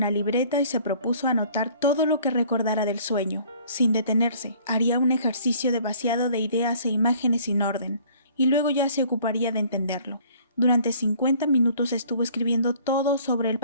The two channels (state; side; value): inverted; both; correlation -0.54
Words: libreta y se propuso anotar todo lo que recordara del sueño. Sin detenerse, haría un ejercicio de vaciado de ideas e imágenes sin orden, y luego ya se ocuparía de entenderlo. Durante 50 minutos estuvo escribiendo todo sobre el